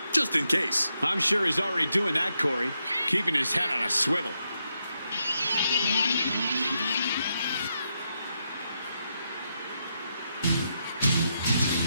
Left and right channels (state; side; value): inverted; both; correlation -0.83